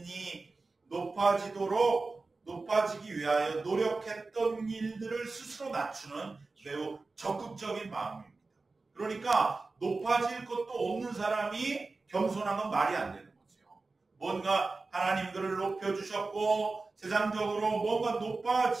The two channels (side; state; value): left; quieter; 3.7 dB